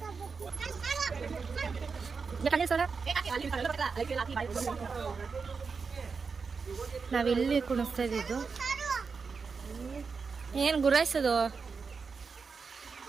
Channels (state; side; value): quieter; left; 5.1 dB